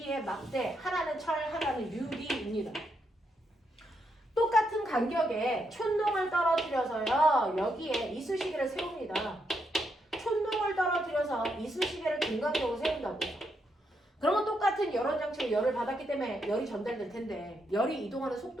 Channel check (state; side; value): normal; both; correlation 0.80